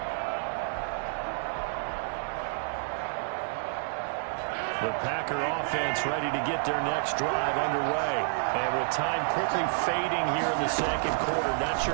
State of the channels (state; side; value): silent; left; digital silence